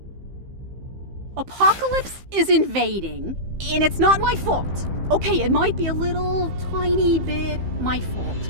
Apocalypse is invading, and it's not my fault. Okay, it might be a little tiny bit my fault,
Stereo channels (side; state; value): left; late; 15 ms